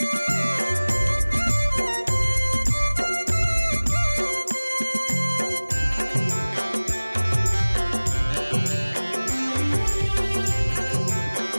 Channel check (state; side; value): inverted; both; correlation -1.00